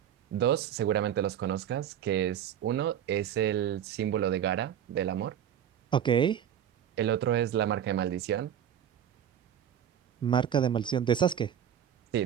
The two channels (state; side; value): quieter; left; 9.6 dB